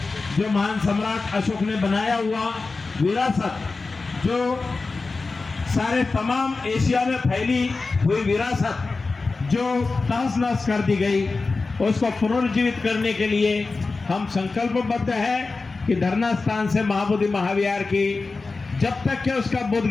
जो महान सम्राट अशोक ने बनाया हुआ विरासत, जो सारे तमाम एशिया में फैली हुई विरासत जो तहस नहस कर दी गई, उसको पुनर्जीवित करने के लिए हम संकल्पबद्ध है कि धरना स्थान से महाबोधि महाविहार की जब तक कि उसका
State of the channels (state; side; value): quieter; right; 3.9 dB